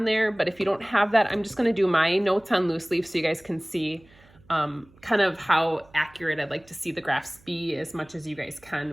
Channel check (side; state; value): right; noise; hum, 28 dB below the sound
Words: there, but if you don't have that, I'm just going to do my notes on loose leaf so you guys can see kind of how accurate I'd like to see the graphs be as much as you guys